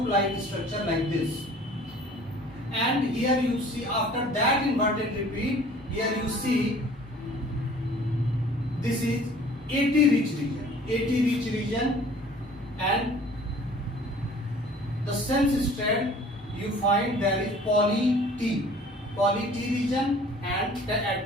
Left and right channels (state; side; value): normal; both; correlation 0.50